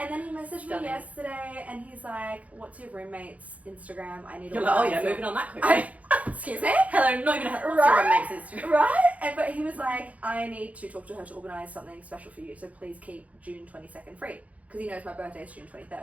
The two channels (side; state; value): left; late; 0.069 ms